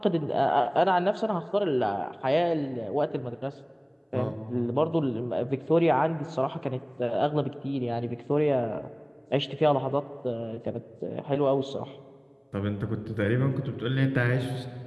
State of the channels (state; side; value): identical; both; correlation 1.00